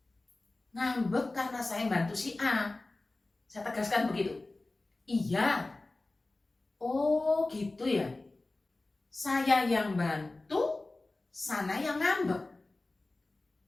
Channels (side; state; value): right; quieter; 3.1 dB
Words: Ngambek karena saya bantu si A. Saya tegaskan begitu. Iya. Oh gitu ya. Saya yang bantu, sana yang ngambek.